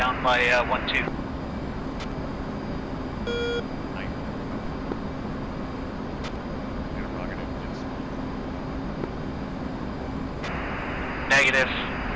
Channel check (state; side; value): identical; both; correlation 1.00